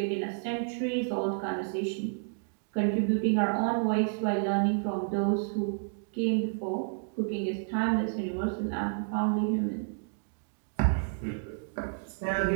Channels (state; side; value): silent; left; digital silence